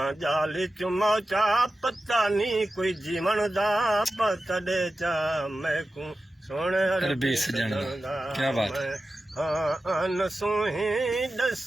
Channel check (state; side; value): normal; both; correlation 0.93